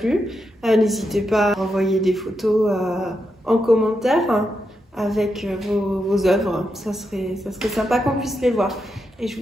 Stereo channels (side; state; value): both; normal; correlation 0.84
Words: N'hésitez pas à envoyer des photos en commentaire, hein, avec vos œuvres. Ça serait sympa qu'on puisse les voir. Et je